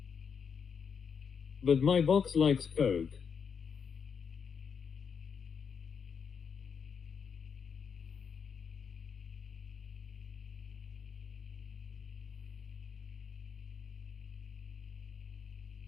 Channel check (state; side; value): quieter; right; 6.5 dB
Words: But my box likes coke.